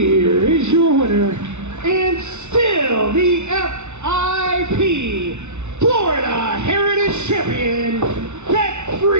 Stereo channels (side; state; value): left; late; 0.82 ms